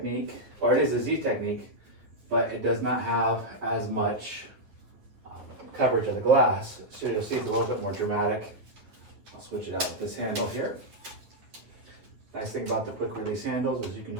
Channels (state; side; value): late; left; 9.6 ms